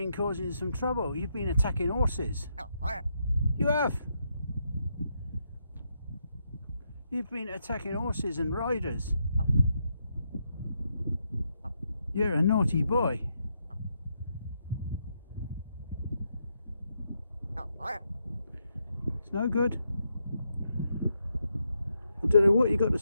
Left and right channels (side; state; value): both; inverted; correlation -0.80